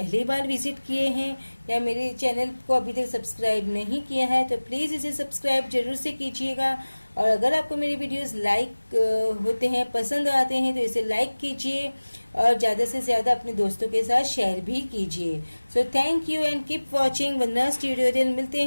बार visit किए हैं या मेरे चैनल को अभी तक सब्सक्राइब नहीं किया है तो प्लीज़ इसे सब्सक्राइब जरूर से कीजिएगा. और अगर आपको मेरी वीडियोस लाइक होते हैं, पसंद आते हैं, तो इसे लाइक कीजिए और ज़्यादा से ज़्यादा अपने दोस्तों के साथ शेयर भी कीजिए. So thank you and keep watching Vandana's tutorial. मिलते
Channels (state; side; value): inverted; both; correlation -1.00